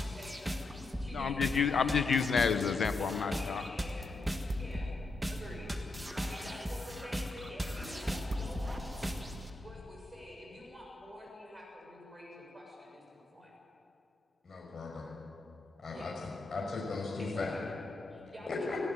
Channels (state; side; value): quieter; right; 3.4 dB